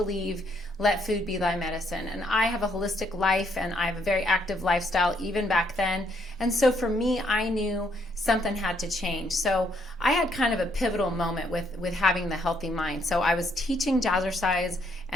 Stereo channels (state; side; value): normal; both; correlation 0.71